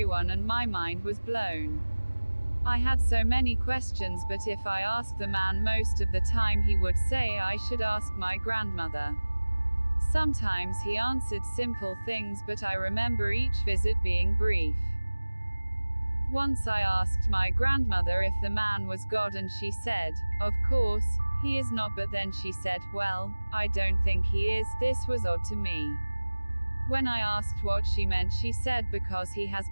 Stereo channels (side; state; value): both; inverted; correlation -1.00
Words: and my mind was blown. I had so many questions, but if I asked the man, most of the time he would say I should ask my grandmother. Sometimes he answered simple things, but I remember each visit being brief. Once I asked my grandmother if the man was God and she said, "Of course, he is not," but then she said, "Well, I don't think he is." This was odd to me. When I asked what she meant, she said because he has